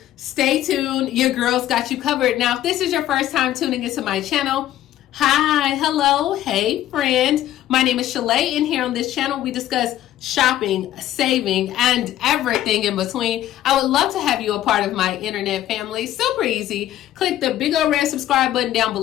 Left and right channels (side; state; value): right; quieter; 13.0 dB